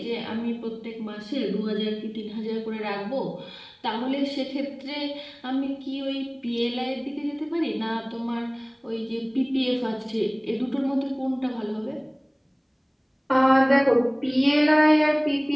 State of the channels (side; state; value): both; identical; correlation 1.00